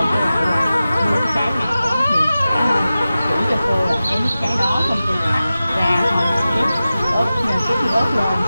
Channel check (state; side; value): inverted; both; correlation -0.95